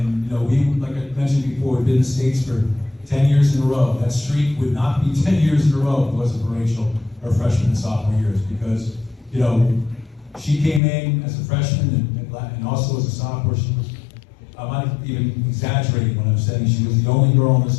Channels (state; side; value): drops out; right; at 10.8 s